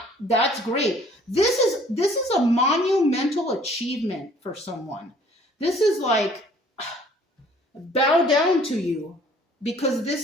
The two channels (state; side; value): normal; both; correlation 0.56